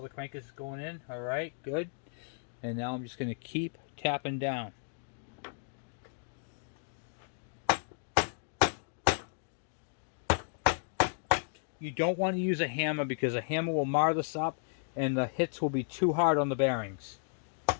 the crank is going in. Alright, good. And now I'm just gonna keep tapping down. You don't want to use a hammer, because a hammer will mar this up and the hits will be too hard on the bearings.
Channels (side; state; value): right; silent; digital silence